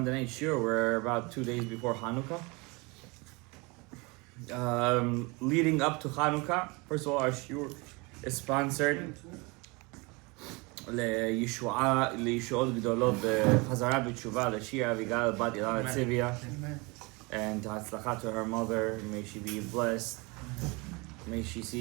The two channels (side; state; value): left; quieter; 27.2 dB